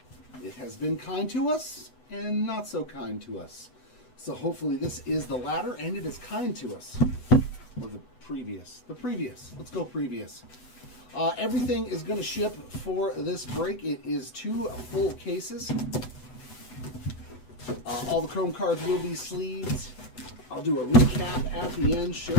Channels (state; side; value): late; right; 8.0 ms